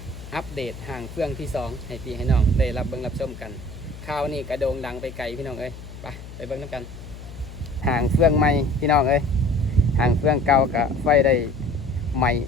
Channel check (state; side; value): noise; left; hum, 14 dB below the sound